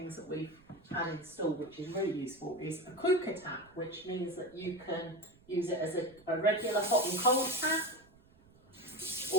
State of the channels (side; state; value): right; noise; rumble, 27 dB below the sound